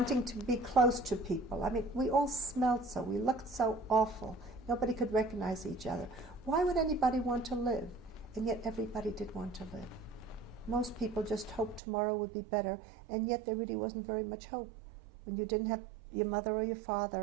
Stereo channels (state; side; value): drops out; left; at 11.8 s